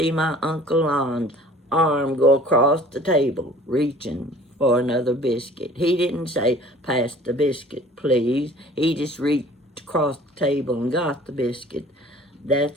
my Uncle Lon's arm go across the table, reaching for another biscuit. He didn't say, "Pass the biscuit, please." He just reached across the table and got the biscuit.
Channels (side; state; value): both; normal; correlation 0.49